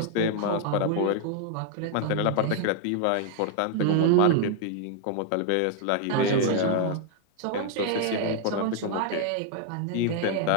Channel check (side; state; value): both; different; correlation 0.00